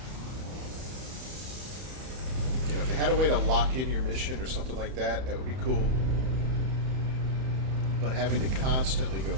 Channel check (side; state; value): left; late; 31 ms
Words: You know, if they had a way to lock in your mission or something like that, that would be cool. But having to constantly go